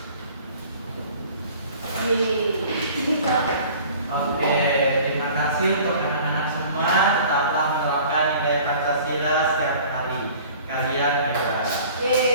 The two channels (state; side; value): inverted; both; correlation -0.47